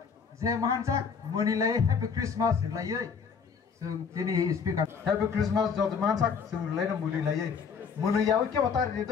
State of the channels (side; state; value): right; quieter; 6.1 dB